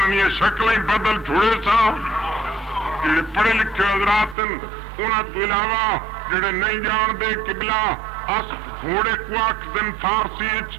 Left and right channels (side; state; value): left; drops out; at 4.4 s